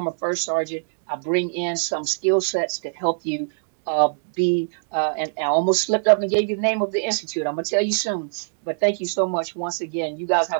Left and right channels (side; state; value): left; silent; digital silence